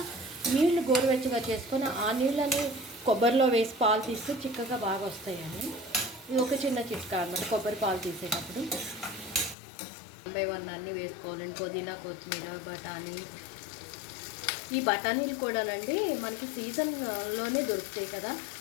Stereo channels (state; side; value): drops out; right; at 9.6 s